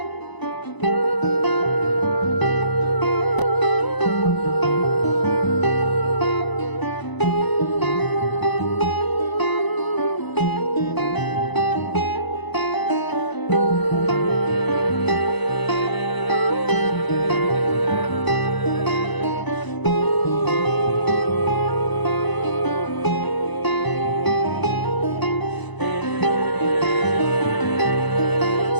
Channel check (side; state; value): right; late; 1.0 ms